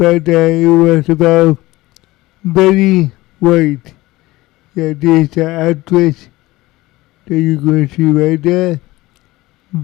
it was about Betty White. Yeah, this actress that you're going to see right there.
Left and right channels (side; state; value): right; quieter; 19.1 dB